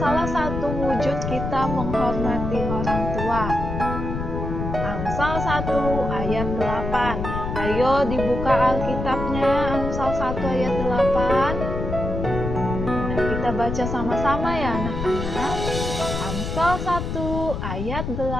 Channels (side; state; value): left; noise; rumble, 4 dB below the sound